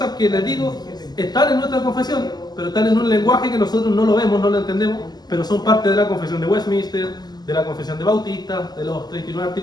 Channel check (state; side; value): late; right; 0.20 ms